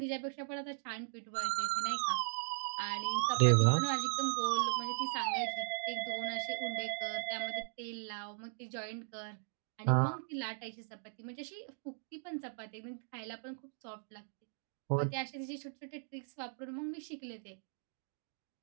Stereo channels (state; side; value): silent; left; digital silence